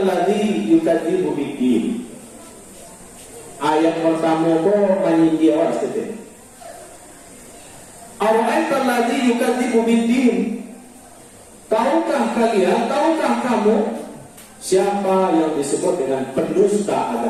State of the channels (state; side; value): identical; both; correlation 1.00